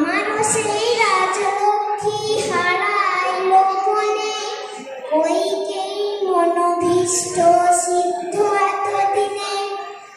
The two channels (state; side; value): identical; both; correlation 1.00